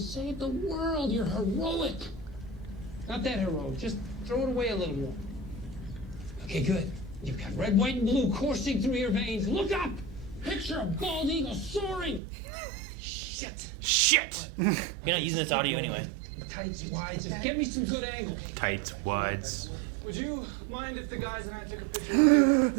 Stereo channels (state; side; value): drops out; left; at 12.2 s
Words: the world. You're heroic. Not that heroic. Just throw it away a little more. Okay, good. You've got red, white, and blue coursing through your veins. Look up. Picture a bald eagle soaring. Shit. Shit! You're not using this audio anyway. Tights, wides. Just get me some good angles. Tights, wides. Would you mind if the guys and I took a picture with